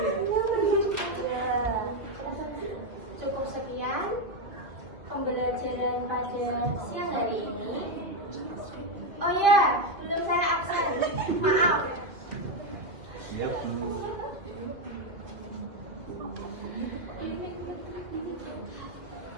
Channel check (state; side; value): late; left; 2.7 ms